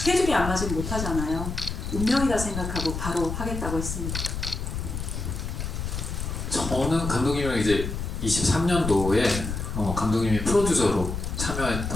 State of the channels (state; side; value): noise; left; rumble, 4 dB below the sound